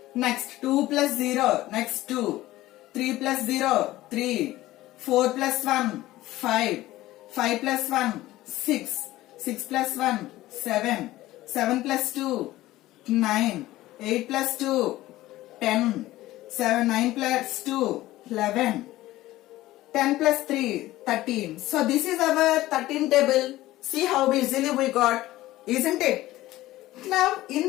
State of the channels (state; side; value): quieter; right; 16.4 dB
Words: Next, 2 plus 0. Next, 2. 3 plus 0, 3. 4 plus 1, 5. 5 plus 1, 6. 6 plus 1, 7. 7 plus 2, 9. 8 plus 2, 10. 9 plus 2, 11. 10 plus 3, 13. So this is our 13 table. See how easily we got, isn't it? Now in